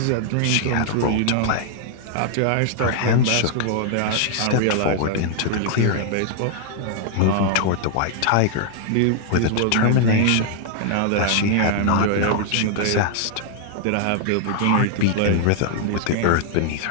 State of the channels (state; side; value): different; both; correlation 0.00